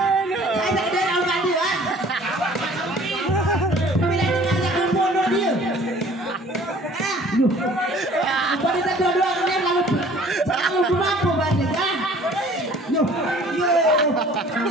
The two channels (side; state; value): both; normal; correlation 0.51